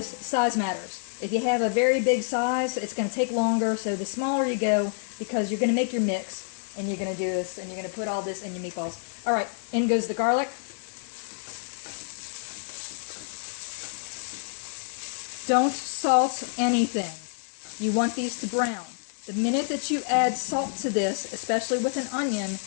size matters. If you have a very big size, it's going to take longer, so the smaller you go, because you're going to make your mix, and you're going to do this, and you're going to put all this in your meatballs. Alright, in goes the garlic. Don't salt anything. You want these to brown. The minute that you add salt to this, especially with an onion,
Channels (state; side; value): silent; right; 60 dB below the other